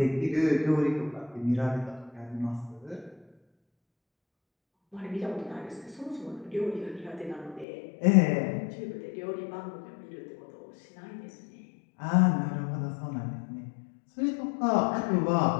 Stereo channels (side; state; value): right; drops out; at 7.7 s